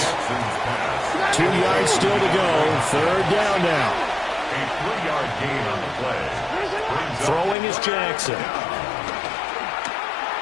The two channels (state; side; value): drops out; right; at 7.6 s